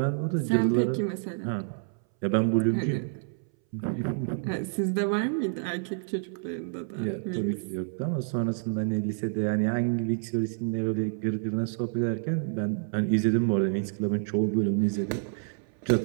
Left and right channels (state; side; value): silent; left; 59 dB below the other